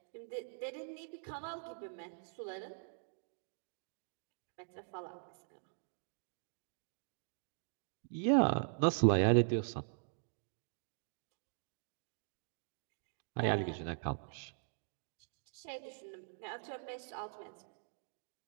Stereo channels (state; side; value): silent; left; digital silence